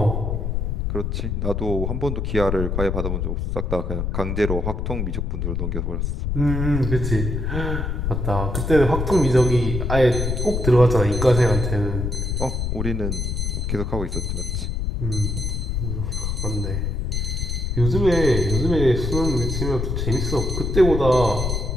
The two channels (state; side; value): noise; left; rumble, 1 dB below the sound